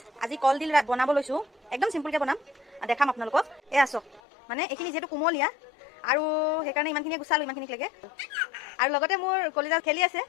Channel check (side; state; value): right; drops out; at 4.2 s